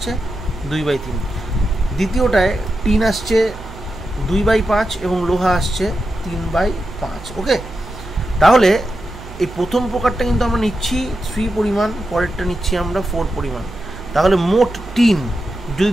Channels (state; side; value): noise; right; hum, 15 dB below the sound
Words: 2/3। দ্বিতীয়টায় টিন আসছে 2/5 এবং লোহা আসছে 3/5। ওকে, তাহলে এই প্রথম প্রকারটা কিন্তু আমরা নিচ্ছি 3 পরিমাণ, পরেরটা নিচ্ছি আমরা 4 পরিমাণ। তাহলে মোট টিন, যদি